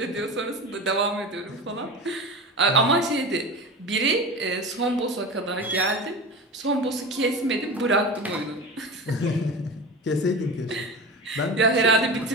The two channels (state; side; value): normal; both; correlation 0.29